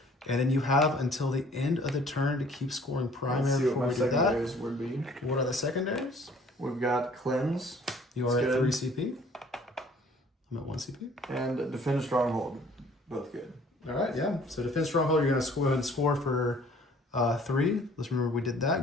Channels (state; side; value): normal; both; correlation 0.55